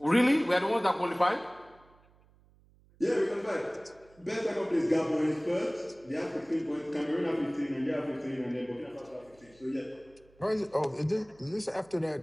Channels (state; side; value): noise; right; hum, 29 dB below the sound